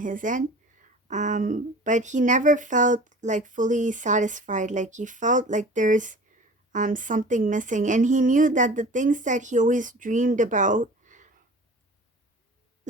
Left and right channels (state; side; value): normal; both; correlation 0.42